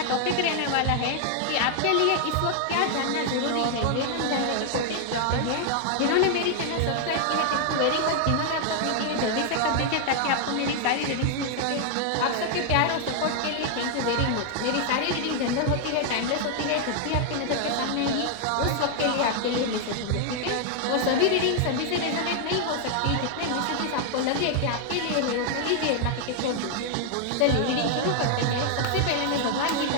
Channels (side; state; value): both; different; correlation 0.00